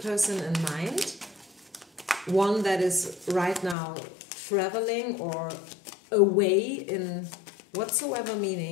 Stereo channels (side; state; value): right; drops out; at 3.8 s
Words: person in mind, one that is right now traveling or away in whatsoever